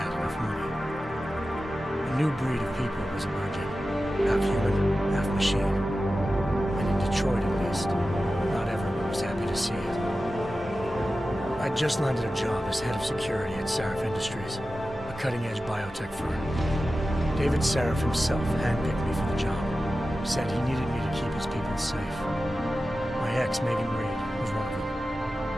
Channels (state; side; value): normal; both; correlation 0.94